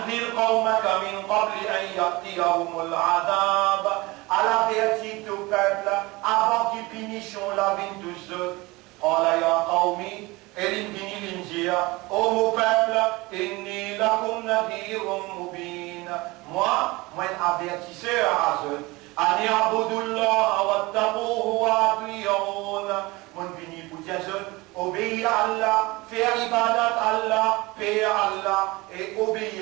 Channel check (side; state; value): left; quieter; 22.6 dB